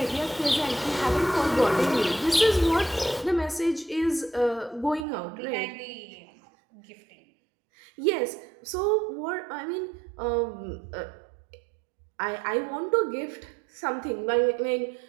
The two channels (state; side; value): drops out; left; at 5.1 s